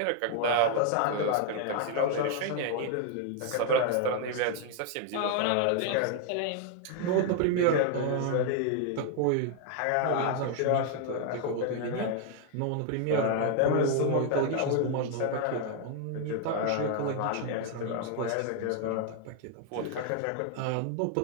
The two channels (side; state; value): both; different; correlation 0.00